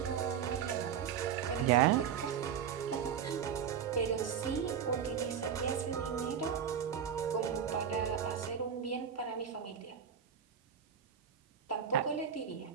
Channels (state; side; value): quieter; left; 8.0 dB